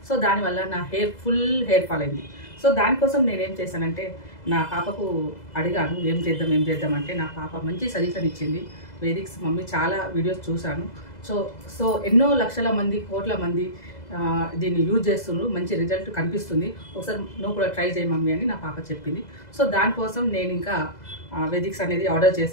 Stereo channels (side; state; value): right; late; 2.0 ms